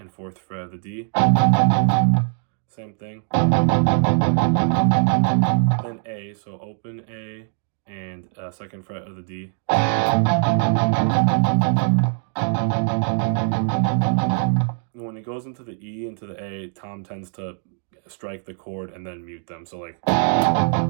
4th fret of the D. Same thing. Then A, so open A and 2nd fret of the D. When it goes into the E, into the A, Tom tends to strike the chord and then mute them. So like,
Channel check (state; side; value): silent; left; digital silence